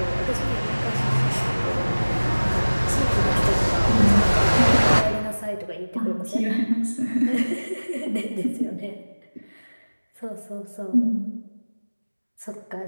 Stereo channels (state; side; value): inverted; both; correlation -1.00